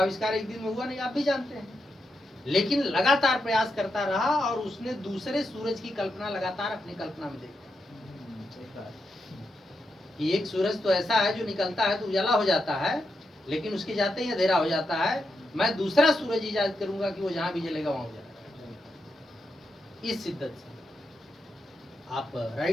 एक दिन में हुआ नहीं, आप भी जानते हैं, लेकिन लगातार प्रयास करता रहा और उसने दूसरे सूरज की कल्पना लगातार अपनी कल्पना में देखी कि एक सूरज तो ऐसा है जो निकलता है तो उजाला हो जाता है, लेकिन उसके जाते ही अंधेरा हो जाता है। मैं दूसरा सूरज इजाद करूंगा कि वो जहां भी जलेगा वहां उजाला। इस शिद्दत से आप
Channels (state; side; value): normal; both; correlation 0.85